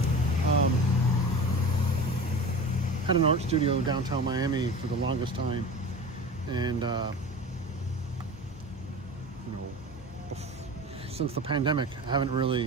Had an art studio downtown Miami for the longest time, and you know, since the pandemic, I haven't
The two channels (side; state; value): both; normal; correlation 0.34